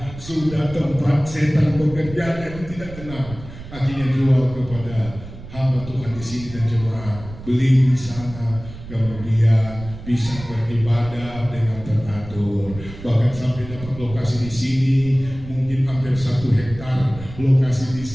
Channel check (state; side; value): noise; right; rumble, 14 dB below the sound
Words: tempat setan bekerja, dan tidak tenang. Akhirnya jual kepada hamba Tuhan di sini dan jemaat, beli di sana, kemudian bisa beribadah dengan teratur. Bahkan sampai dapat lokasi di sini, mungkin hampir 1 hektar lokasi di